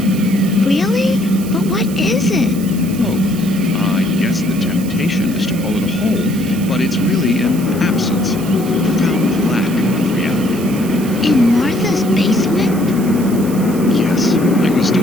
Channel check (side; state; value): right; noise; hiss, 15 dB below the sound